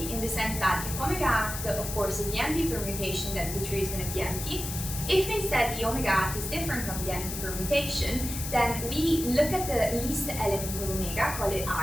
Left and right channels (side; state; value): left; noise; hiss, 6 dB below the sound